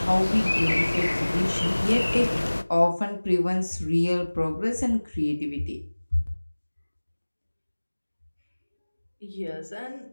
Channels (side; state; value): both; inverted; correlation -1.00